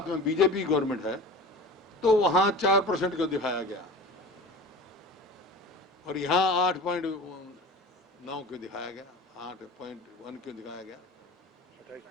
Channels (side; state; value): both; normal; correlation 0.36